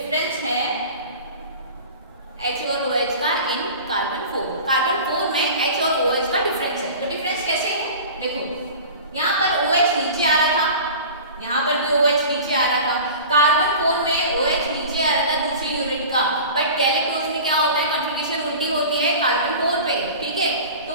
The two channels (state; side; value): inverted; both; correlation -0.37